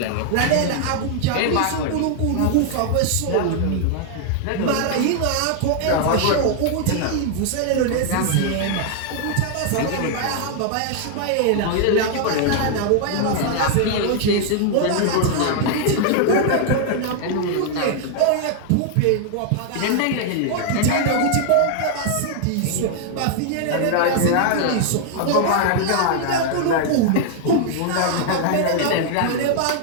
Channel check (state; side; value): different; both; correlation 0.00